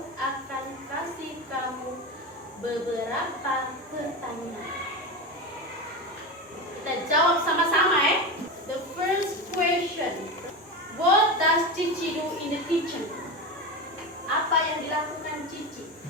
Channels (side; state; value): both; normal; correlation 0.21